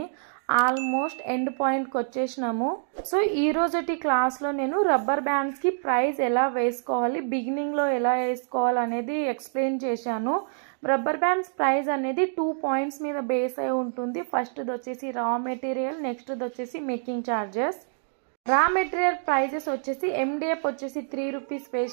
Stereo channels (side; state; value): left; silent; digital silence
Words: ఆల్మోస్ట్ ఎండ్ పాయింట్కి వచ్చేసినాము. సో ఈ రోజుటి క్లాస్లో నేను రబ్బర్ బ్యాండ్స్కి ప్రైస్ ఎలా వేసుకోవాలి, బిగినింగ్లో ఎలా వేసుకోవాలి అనేది ఎక్స్ప్లెయిన్ చేశాను. రబ్బర్ బ్యాండ్స్ ప్రైస్ అనేది 2 పాయింట్స్ మీద బేస్ అయి ఉంటుంది. ఫస్ట్ది వచ్చేసి రా మెటీరియల్, నెక్స్ట్ది వచ్చేసి making charges. Raw material prices వచ్చేసి MDF వచ్చేసి 3 రూపీస్